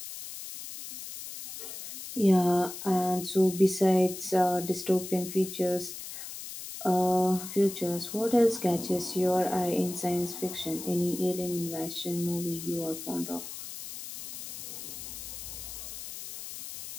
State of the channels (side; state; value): left; noise; hiss, 10 dB below the sound